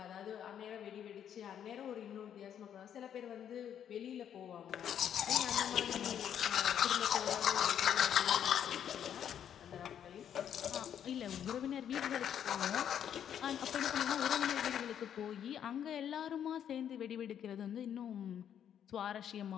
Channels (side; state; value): right; quieter; 9.3 dB